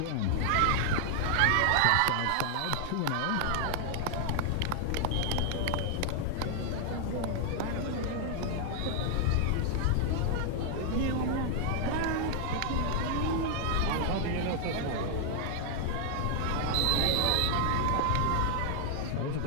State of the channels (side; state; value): both; different; correlation 0.00